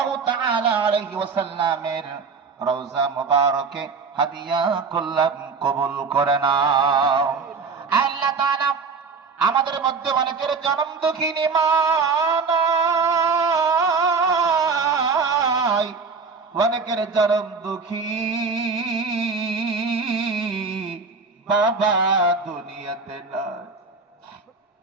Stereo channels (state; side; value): quieter; left; 4.9 dB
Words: তাআলা আলাইহি ওয়াসাল্লামের রওজা মুবারকে হাদিয়া করলাম, কবুল করে নাও। আল্লাহ তাআলা আমাদের মধ্যে অনেকের জন্ম দুঃখিনী মা নাই, অনেকের জন্ম দুঃখী বাবা দুনিয়াতে নাই,